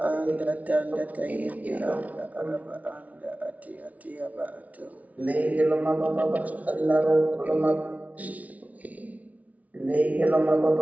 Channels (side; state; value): left; late; 0.070 ms